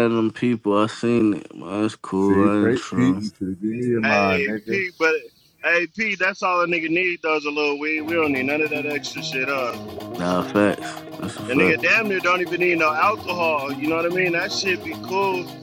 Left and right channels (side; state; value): both; identical; correlation 1.00